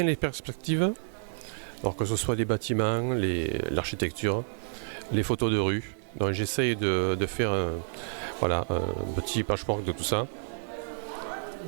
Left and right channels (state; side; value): silent; left; digital silence